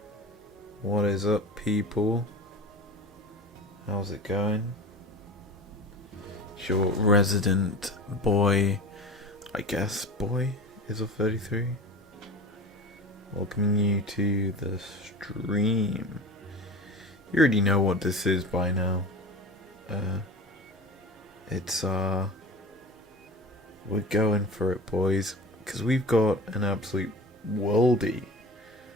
What is up, people? How's it going? It's your resident boy, I guess boy, izlogic.business. Welcoming you to the stream. You already know what this is by now. We're going for it, boys, because we've got an absolute worldie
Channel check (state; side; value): normal; both; correlation 0.34